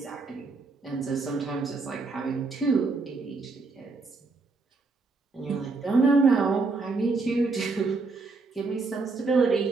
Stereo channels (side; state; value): left; quieter; 4.0 dB